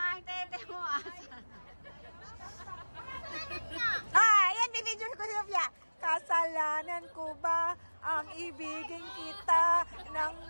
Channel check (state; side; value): inverted; both; correlation -1.00